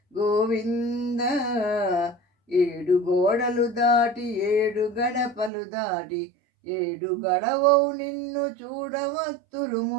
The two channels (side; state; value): left; drops out; at 5.5 s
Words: గోవింద. ఏడు గోడలు దాటి ఏడు గడపలు దాటి ఏడు గడవవు నిన్ను చూడవత్తురు